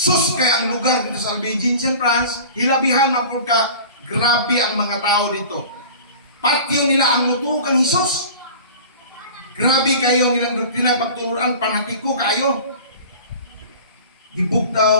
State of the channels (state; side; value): inverted; both; correlation -0.40